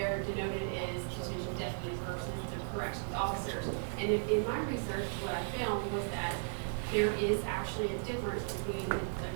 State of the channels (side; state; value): left; silent; digital silence